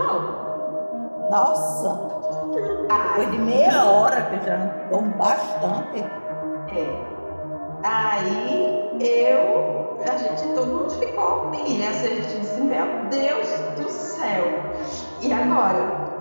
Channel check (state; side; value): inverted; both; correlation -1.00